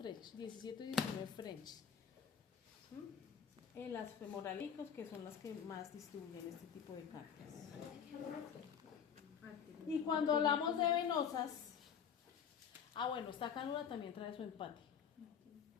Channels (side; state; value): right; quieter; 7.7 dB